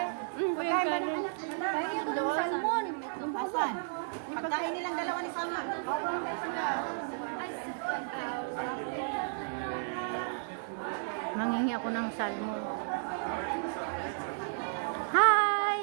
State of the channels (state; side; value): silent; left; digital silence